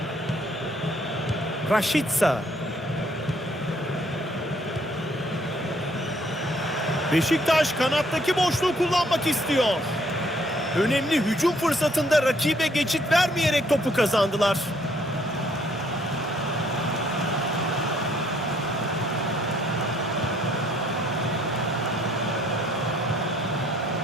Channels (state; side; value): normal; both; correlation 0.65